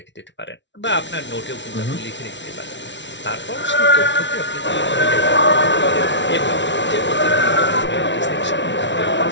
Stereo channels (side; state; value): right; late; 0.52 ms